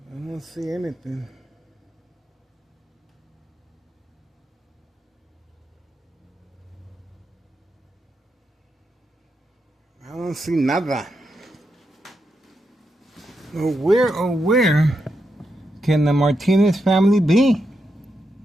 I don't see anything. I don't see nada. Where can the Martinez family be?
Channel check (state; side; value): normal; both; correlation 0.84